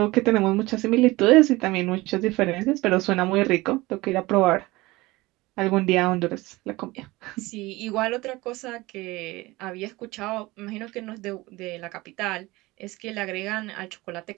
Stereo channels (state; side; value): quieter; left; 20.7 dB